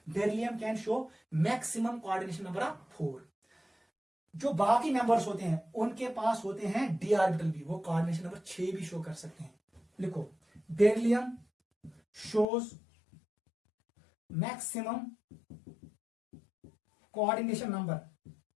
beryllium can show maximum coordination number of 4। जो बाकी मेंबर्स होते हैं उनके पास होते हैं d ऑर्बिटल भी, वो कोऑर्डिनेशन नंबर 6 भी शो कर सकते हैं। लिखो, beryllium shows maximum coordination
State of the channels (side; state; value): right; drops out; at 12.5 s